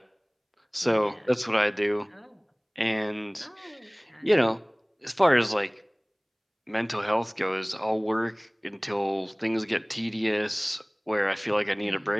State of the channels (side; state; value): both; identical; correlation 1.00